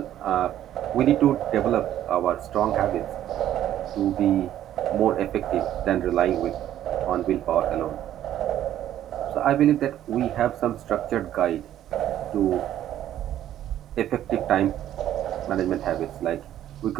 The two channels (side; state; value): left; quieter; 11.9 dB